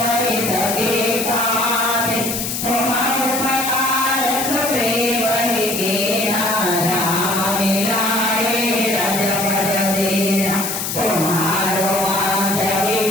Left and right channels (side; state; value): left; noise; hiss, 3 dB below the sound